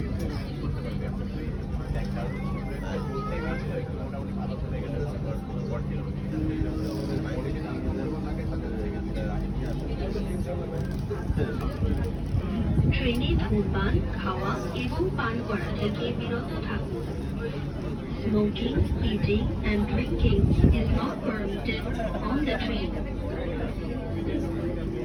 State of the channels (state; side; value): identical; both; correlation 1.00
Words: ট্রেনে ধূমপান খাওয়া এবং পান করা থেকে বিরত থাকুন। Smoking, eating and drinking is not permitted on the train.